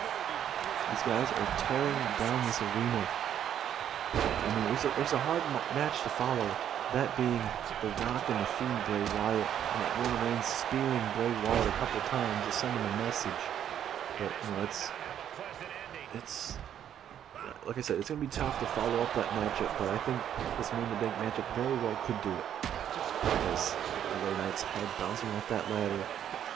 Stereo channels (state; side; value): quieter; left; 9.9 dB